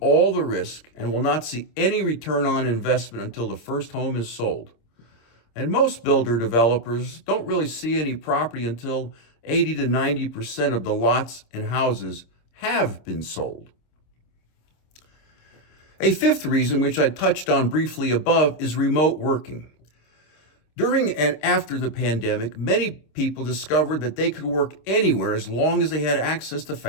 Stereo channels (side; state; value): right; late; 26 ms